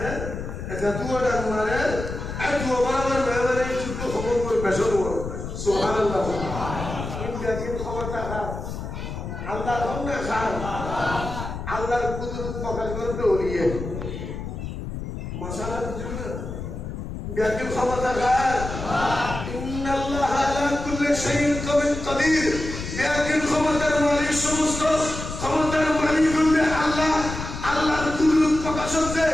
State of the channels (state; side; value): noise; left; rumble, 7 dB below the sound